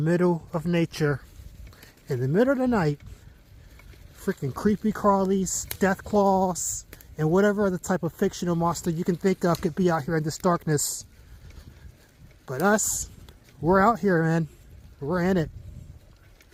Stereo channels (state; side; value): identical; both; correlation 1.00